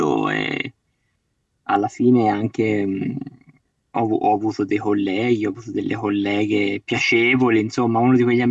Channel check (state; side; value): identical; both; correlation 1.00